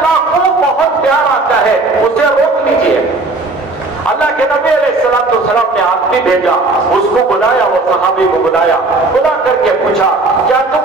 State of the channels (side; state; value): left; quieter; 3.3 dB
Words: کو بہت پیار آتا ہے, اسے روک لیجئے. اللہ کے نبی علیہ السلام نے آدمی بھیجا, اس کو بلایا, وہ صحابی کو بلایا, بلا کر کے پوچھا کیا